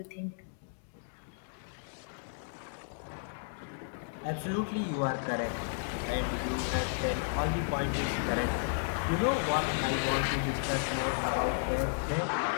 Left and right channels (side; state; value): right; silent; digital silence